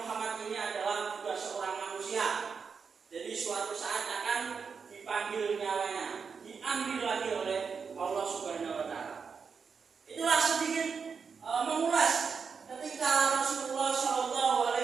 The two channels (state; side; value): quieter; left; 5.8 dB